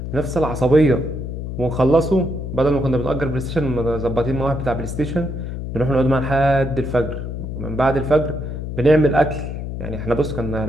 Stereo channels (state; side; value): noise; left; hum, 6 dB below the sound